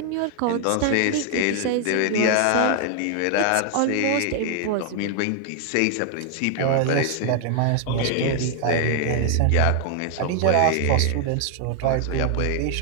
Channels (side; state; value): both; different; correlation 0.00